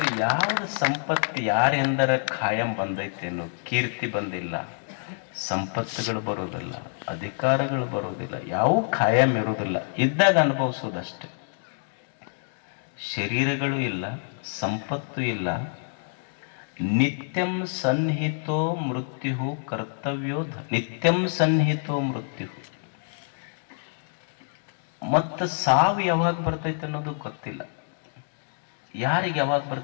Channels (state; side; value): silent; right; digital silence